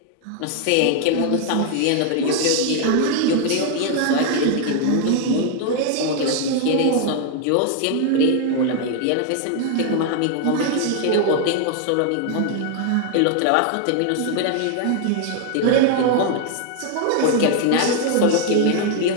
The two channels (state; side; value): different; both; correlation 0.00